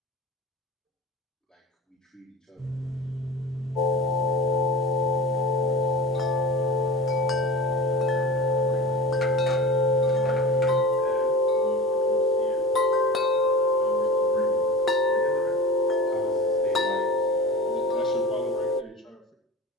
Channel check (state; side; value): normal; both; correlation 0.33